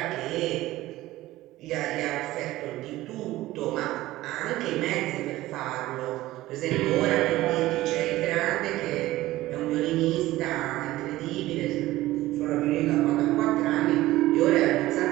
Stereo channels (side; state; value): left; quieter; 16.7 dB